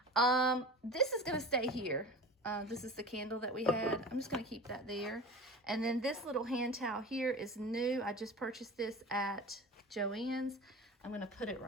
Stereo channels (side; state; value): both; normal; correlation 0.34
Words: This is gonna stay here. This is the candle that we had. I'm just gonna keep that there. And then this little hand towel here is new. I just purchased this at Joann's. I'm gonna put it